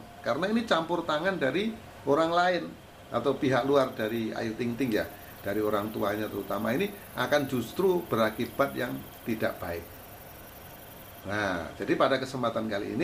Karena ini campur tangan dari orang lain atau pihak luar dari Ayu Ting Ting ya, dari orang tuanya terutama, ini akan justru berakibat yang tidak baik. Nah, jadi pada kesempatan kali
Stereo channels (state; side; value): identical; both; correlation 1.00